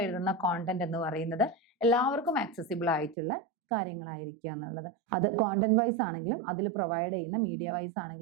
എഴുതുന്ന കോണ്ടന്റ് എന്ന് പറയുന്നത് എല്ലാവർക്കും ആക്സസിബിൾ ആയിട്ടുള്ള കാര്യങ്ങളായിരിക്കുക എന്നുള്ളത്. അത് കോണ്ടന്റ് വൈസ് ആണെങ്കിലും അതിൽ പ്രൊവൈഡ് ചെയ്യുന്ന മീഡിയ വൈസ്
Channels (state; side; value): drops out; left; at 3.2 s